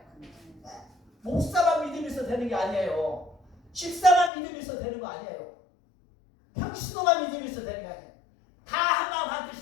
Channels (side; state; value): right; drops out; at 4.3 s